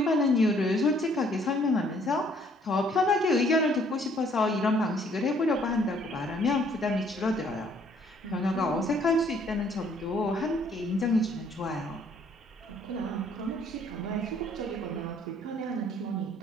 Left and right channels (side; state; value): both; normal; correlation 0.63